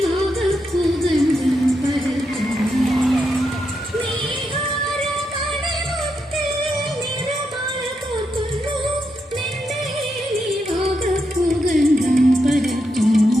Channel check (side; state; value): both; normal; correlation 0.83